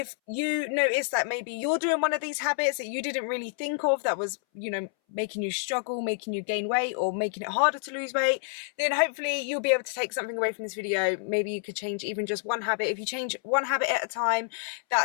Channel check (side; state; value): right; silent; 59 dB below the other